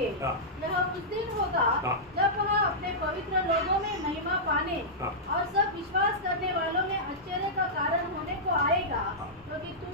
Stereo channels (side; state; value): both; normal; correlation -0.12